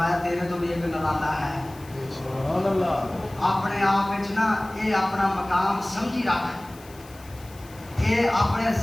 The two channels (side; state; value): left; noise; hiss, 23 dB below the sound